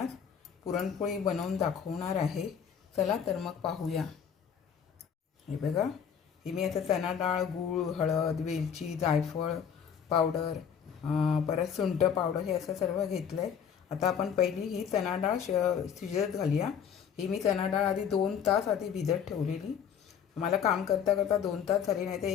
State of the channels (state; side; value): quieter; right; 7.8 dB